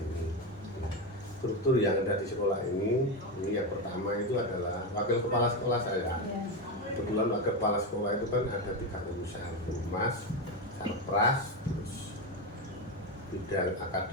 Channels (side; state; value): both; normal; correlation 0.13